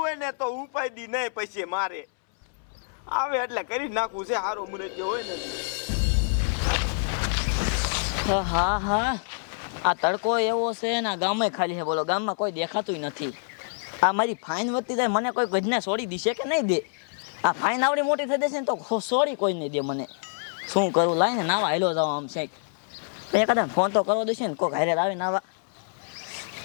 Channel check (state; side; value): silent; right; 61 dB below the other